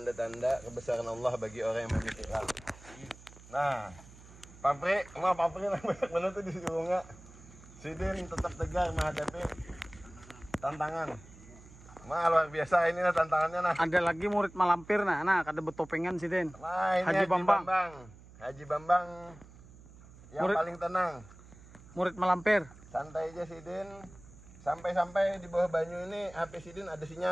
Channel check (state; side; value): noise; right; hum, 20 dB below the sound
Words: kebesaran Allah bagi orang yang memikirkan. Nah, pabrik lah banyak benar tuh di bunga. Sidin tetap tegar menghadapi tantangan. Luar biasa inilah tantangannya nah. ada lagi murid malampir nah kada betopengan Sidin. Nah, ini Haji Bambang. Haji Bambang yang Murid- paling tenang. Murid malampir. Santai aja Sidin. Sampai-sampai di bawah banyu ini HP Sidin ada